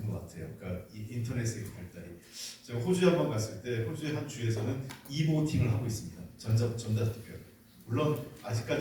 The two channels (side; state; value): both; identical; correlation 1.00